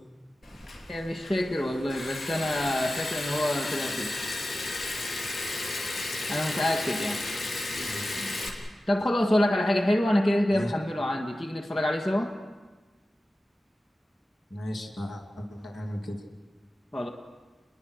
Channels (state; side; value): normal; both; correlation 0.94